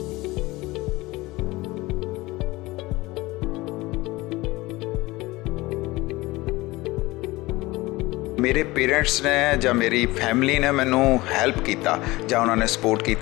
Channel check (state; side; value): quieter; right; 20.5 dB